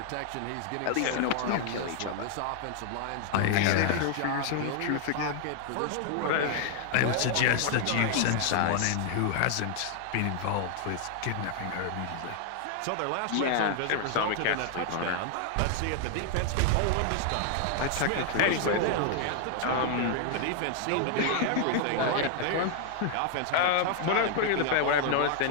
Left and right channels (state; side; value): different; both; correlation 0.00